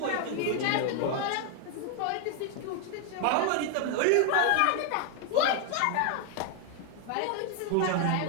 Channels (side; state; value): both; different; correlation 0.00